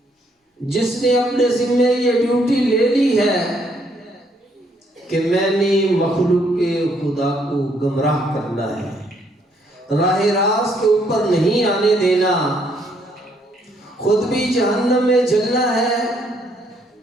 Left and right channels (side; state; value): both; normal; correlation 0.70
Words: جس نے اپنے ذمہ یہ ڈیوٹی لے لی ہے کہ میں نے مخلوق کے خدا کو گمراہ کرنا ہے، راہ راست کے اوپر نہیں آنے دینا، خود بھی جہنم میں جلنا ہے